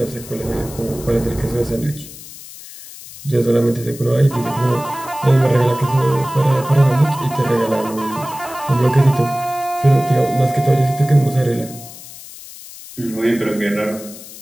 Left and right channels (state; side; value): noise; left; hiss, 16 dB below the sound